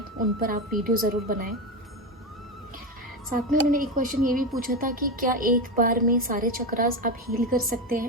उन पर आप वीडियो ज़रूर बनाएं। साथ में उन्होंने एक क्वेश्चन ये भी पूछा था कि क्या एक बार में सारे चक्रास आप हील कर सकते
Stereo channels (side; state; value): both; normal; correlation 0.16